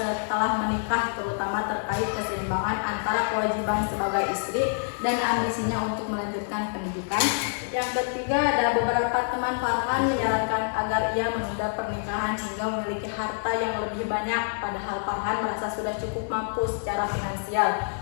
menikah, terutama terkait keseimbangan antara kewajiban sebagai istri dan ambisinya untuk melanjutkan pendidikan. Yang ketiga ada beberapa teman Farhan menyarankan agar ia menunda pernikahan hingga memiliki harta yang lebih banyak, padahal Farhan merasa sudah cukup mampu secara finansial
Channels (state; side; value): silent; right; digital silence